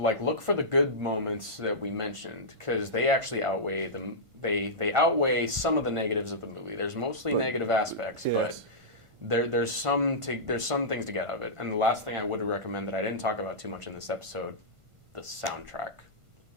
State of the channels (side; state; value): left; late; 1.5 ms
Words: for the good moments that we mentioned, because they actually outweigh them. They outweigh some of the negatives of the movie. There's mostly negative aspects, but there's some things to get out of it. And the last thing I would recommend that I didn't talk about too much in this episode. The soundtrack.